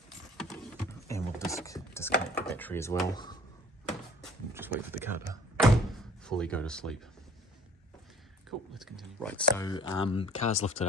And we'll disconnect the battery as well. We'll just wait for the car to fully go to sleep. Cool, let's continue. Right, so car's lifted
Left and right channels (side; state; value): both; normal; correlation 0.51